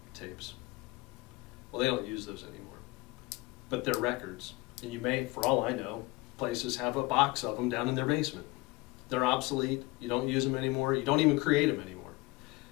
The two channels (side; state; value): right; quieter; 22.8 dB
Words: tapes. Well, they don't use those anymore. But they're records. And you may, for all I know, places have a box of them down in their basement. They're obsolete. You don't use them anymore. You don't even create them anymore.